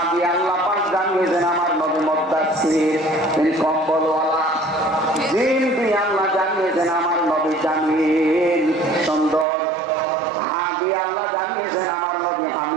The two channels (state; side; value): drops out; left; at 9.5 s